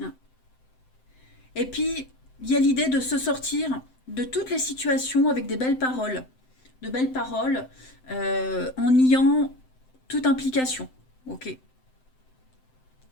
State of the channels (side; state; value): right; late; 7.8 ms